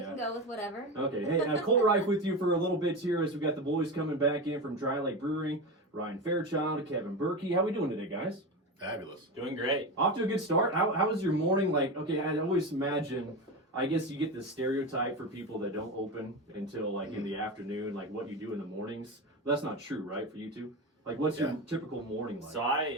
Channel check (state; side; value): normal; both; correlation 0.21